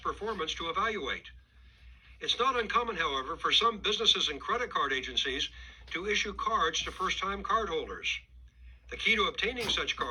performance to evaluate? It's not uncommon, however, for some businesses and credit card agencies to issue cards to first-time cardholders. The key to obtaining such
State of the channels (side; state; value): both; identical; correlation 1.00